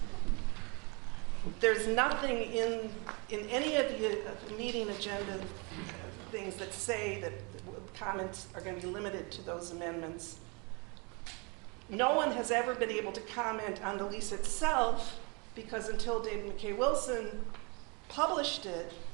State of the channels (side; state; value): left; quieter; 31.1 dB